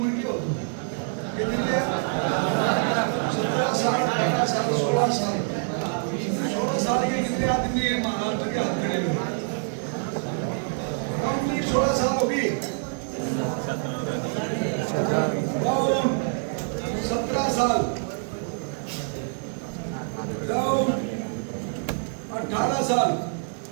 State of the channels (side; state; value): left; silent; 60 dB below the other